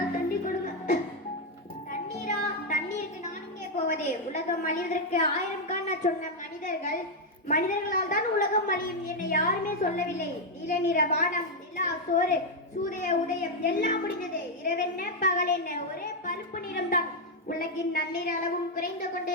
தண்ணி கொடுங்க. தண்ணீரா? தண்ணீருக்கு நான் இங்கே போவதே? உலகம் அழிவதற்கு 1000 காண சொன்ன மனிதர்களால் தான் உலகம் அழியும். என்னை யாருமே சொல்லவில்லை. நீல நிற வானம், நிலா, சோறு, சூரிய உதயம் எல்லாம் முடிந்தது. இரவென்ன பகல் என்ன, ஒரே பழுப்பு நிறம் தான். உலகின் நன்னீர் அளவும் குறைந்து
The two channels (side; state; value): both; normal; correlation 0.01